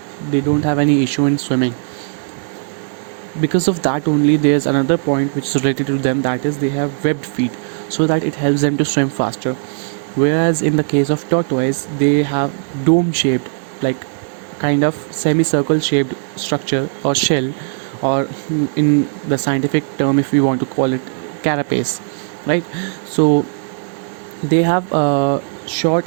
they don't have any issue in swimming. Because of that only, there's another point which is related to them, that is they have webbed feet, so that it helps them to swim faster. Whereas in the case of tortoise, they have dome shaped, like kind of semicircle shaped structure or shell, or in the scientific term, if we want to call it, carapace, right? So they have short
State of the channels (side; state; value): left; silent; digital silence